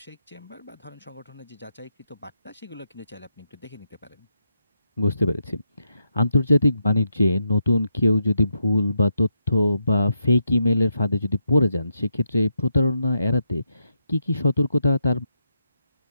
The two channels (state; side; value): inverted; both; correlation -0.82